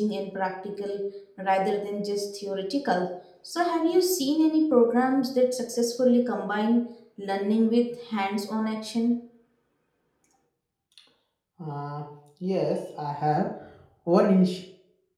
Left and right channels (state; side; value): identical; both; correlation 1.00